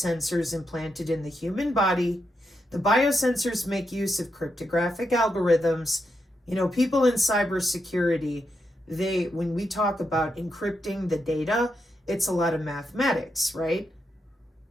implanted in the human body. The biosensors make use of cryptographic algorithms You know, people in cybersecurity, when we talk about encrypting the data, it's a lot of mathematics, right?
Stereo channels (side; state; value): both; normal; correlation 0.84